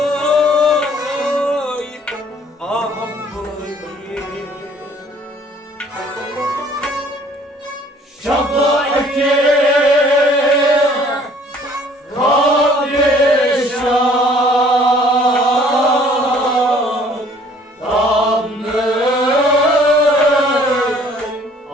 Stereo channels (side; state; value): both; normal; correlation 0.57